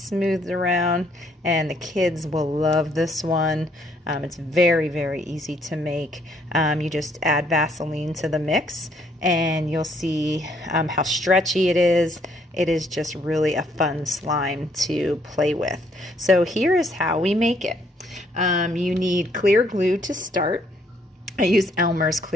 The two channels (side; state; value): both; normal; correlation 0.68